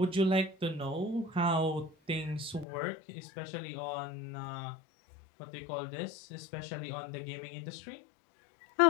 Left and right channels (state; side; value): drops out; right; at 2.7 s